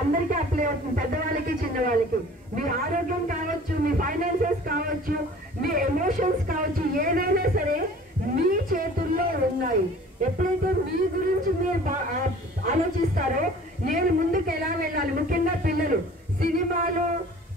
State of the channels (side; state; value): both; normal; correlation 0.47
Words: అందరికీ అప్లై అవుతుంది, పెద్దవాళ్ళకి చిన్నవాళ్ళకి. మీ ఆరోగ్యం కావచ్చు, మీ ఫైనాన్సెస్ కావచ్చు, మీ ఎమోషన్స్ కావచ్చు, ఏదైనా సరే మీ చేతుల్లో ఉన్నాయి. ఎప్పుడైతే మీ గురించి మీరు ఆలోచిస్తారో నేను ముందుకు ఎలా వెళ్ళాలి, ముఖ్యంగా పిల్లలు సినిమాలు,